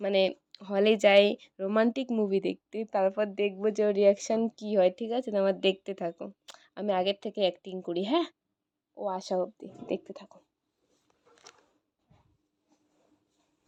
মানে হলে যাই রোমান্টিক মুভি দেখতে, তারপর দেখবো যে ওর রিয়াকশান কী হয়। ঠিক আছে, তোমার দেখতে থাকো, আমি আগের থেকে অ্যাক্টিং করি। হ্যাঁ, ও আসা অবধি দেখতে থাকো।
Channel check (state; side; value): identical; both; correlation 1.00